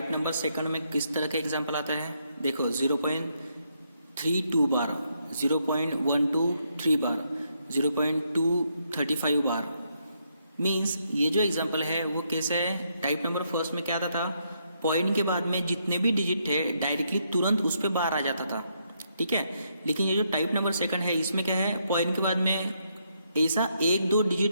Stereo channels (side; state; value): both; inverted; correlation -0.76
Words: नंबर सेकंड में किस तरह के एग्जाम्पल आता है। देखो 0.32 बार, 0.123 बार, 0.235 बार। मीन्स ये जो एग्जाम्पल है वो कैसे है, टाइप नंबर फर्स्ट में क्या आता था, पॉइंट के बाद में जितने भी डिजिट थे डायरेक्टली तुरंत उस पर बार आ जाता था, ठीक है। लेकिन ये जो टाइप नंबर सेकंड है, इसमें क्या है, पॉइंट के बाद में ऐसा 1-2